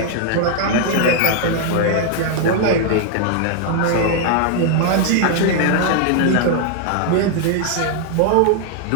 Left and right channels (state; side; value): different; both; correlation 0.00